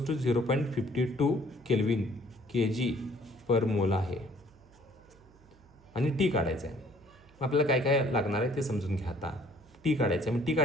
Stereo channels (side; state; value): right; noise; hum, 27 dB below the sound